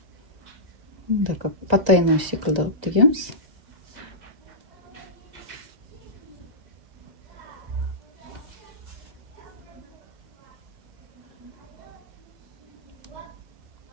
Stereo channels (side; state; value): left; late; 1.9 ms